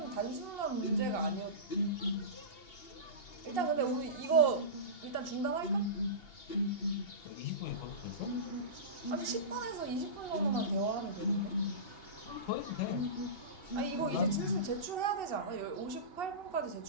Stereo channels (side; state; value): right; late; 2.7 ms